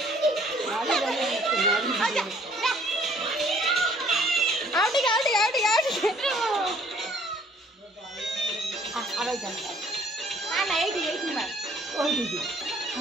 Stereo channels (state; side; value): normal; both; correlation 0.59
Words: आवाज जान हां ना एठी मार ओई दीदी